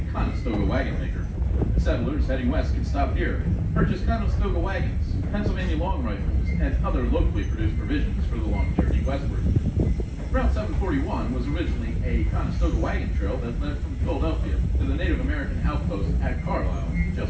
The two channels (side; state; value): both; identical; correlation 1.00